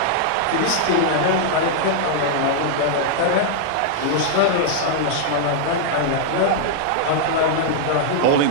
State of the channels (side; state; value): both; different; correlation -0.01